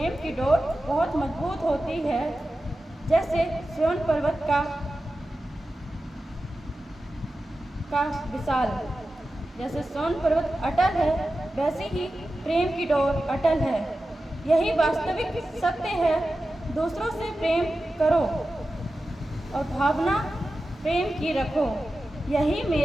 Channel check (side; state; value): both; normal; correlation 0.93